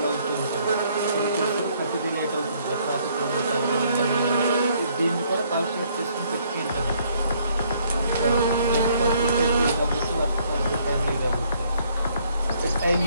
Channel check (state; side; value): inverted; both; correlation -0.66